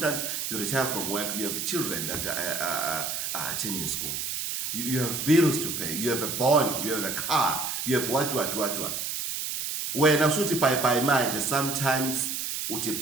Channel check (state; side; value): noise; right; hiss, 3 dB below the sound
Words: you retire from work, you have children that are attending school. You have bills to pay. You have a bond. You have a car. You have what. When I say bye mind, sometimes uti